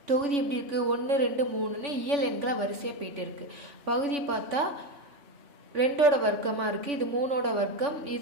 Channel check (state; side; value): late; left; 3.5 ms